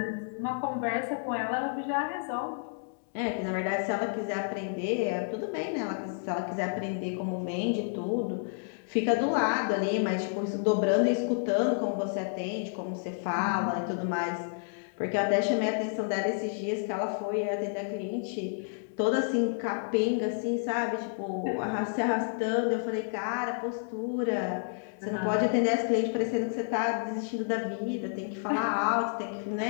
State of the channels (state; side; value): silent; right; digital silence